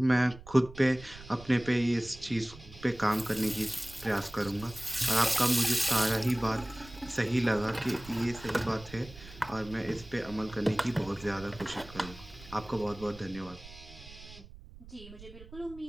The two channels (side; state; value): right; noise; rumble, 18 dB below the sound